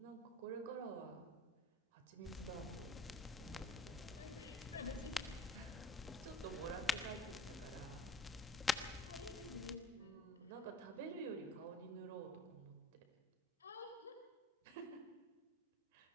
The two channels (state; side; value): normal; both; correlation 0.47